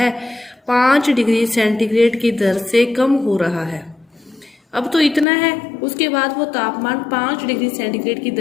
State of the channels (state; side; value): drops out; right; at 5.2 s